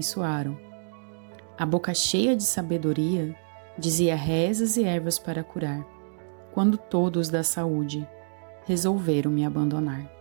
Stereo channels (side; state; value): left; silent; digital silence